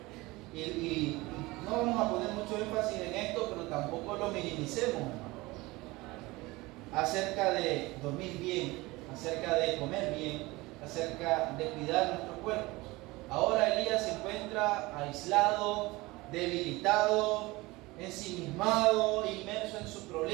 Y no vamos a poner mucho énfasis en esto, pero tampoco lo minimicemos, hermano. Acerca de dormir bien, acerca de comer bien, acerca de cuidar nuestros cuerpos. Ahora Elías se encuentra aislado, debilitado, ensimismado, inmerso en su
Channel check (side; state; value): left; quieter; 21.6 dB